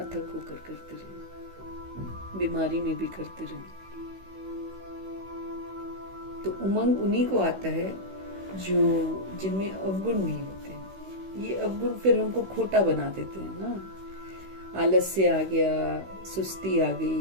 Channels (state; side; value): late; left; 16 ms